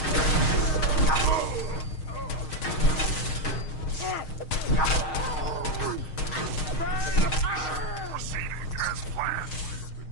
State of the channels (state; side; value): late; right; 6.4 ms